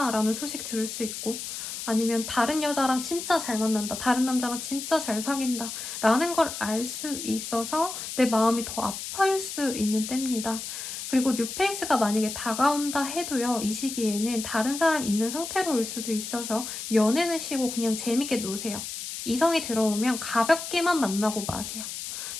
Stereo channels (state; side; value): noise; left; hiss, 7 dB below the sound